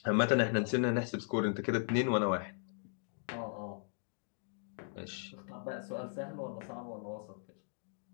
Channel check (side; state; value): right; silent; digital silence